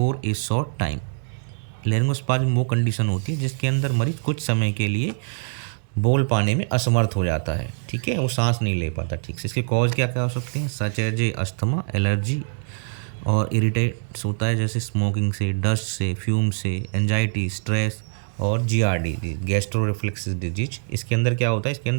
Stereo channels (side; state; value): left; silent; digital silence